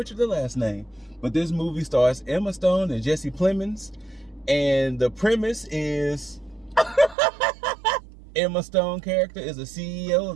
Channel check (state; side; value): drops out; left; at 7.2 s